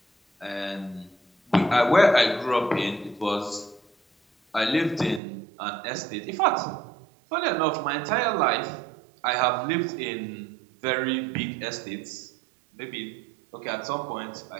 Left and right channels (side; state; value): left; drops out; at 5.2 s